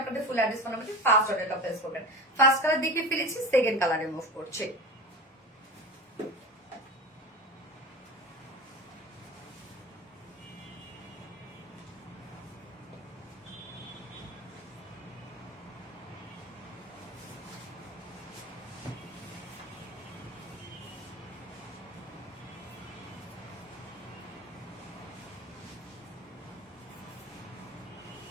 আপনাদের ফুল অ্যাড্রেস ফোন নাম্বারে ফার্স্ট অর্ডারটা প্লেস করবেন। ফার্স্ট কালার দেখে ফেলেছি, সেকেন্ড কালারে মুভ করছে।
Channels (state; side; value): normal; both; correlation 0.29